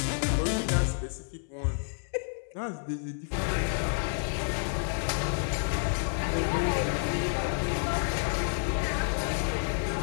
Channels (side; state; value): right; silent; 58 dB below the other